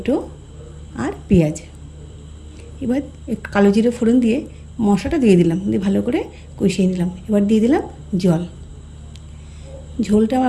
আর পেঁয়াজ। এবার একটু কালো জিরে ফোড়ন দিয়ে মশলাটা দিয়ে দিলাম, দিয়ে ভালো করে কষিয়ে নিলাম। এবার দিয়ে দিলাম জল। ঝোলটা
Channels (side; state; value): both; identical; correlation 1.00